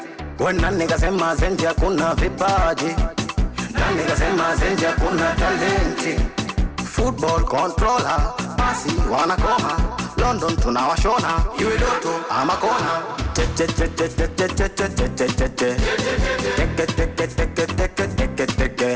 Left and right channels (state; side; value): identical; both; correlation 1.00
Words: When nikasema zenja kuna vipaji, na nikasema zenja kuna talenti. Football controller, basi wanakoma. London tunawashona, iwe Doto ama kona.